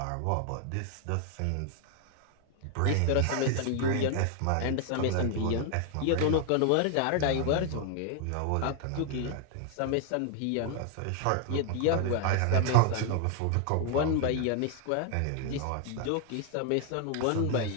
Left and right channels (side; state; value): both; different; correlation 0.00